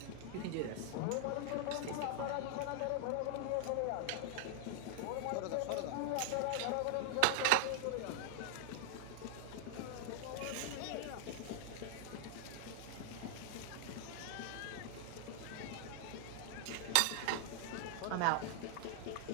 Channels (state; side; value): different; both; correlation 0.00